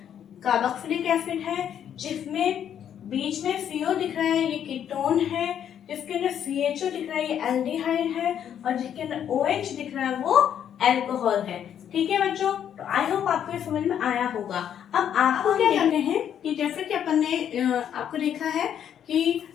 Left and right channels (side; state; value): right; quieter; 9.3 dB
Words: कार्बोक्सिलिक एसिड है, जिसमें बीच में CO दिख रहा है ये कीटोन है, जिसके अंदर CHO दिख रहा है ये एल्डिहाइड है, और जिसके अंदर OH दिख रहा है वो अल्कोहल है। ठीक है बच्चों, तो आई होप आपको ये समझ में आया होगा। अब आपको क्या करने हैं कि जैसे कि अपन ने आपको देखा है कि